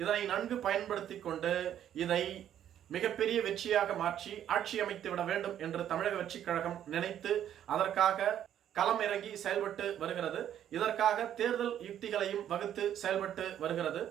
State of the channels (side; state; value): left; quieter; 10.5 dB